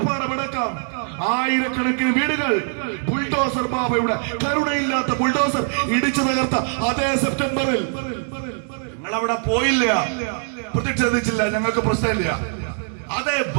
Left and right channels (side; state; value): left; silent; 59 dB below the other